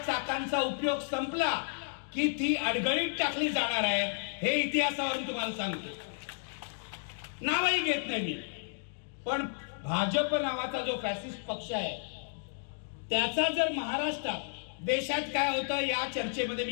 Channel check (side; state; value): right; silent; digital silence